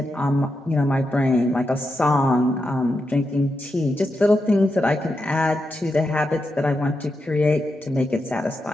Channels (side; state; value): both; normal; correlation 0.86